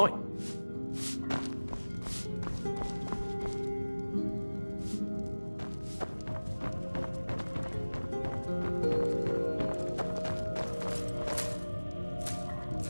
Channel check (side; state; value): both; inverted; correlation -1.00